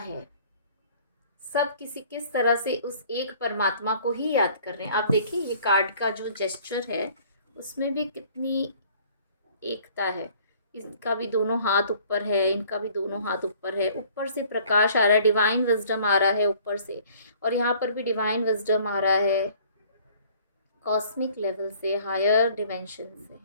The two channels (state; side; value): inverted; both; correlation -0.55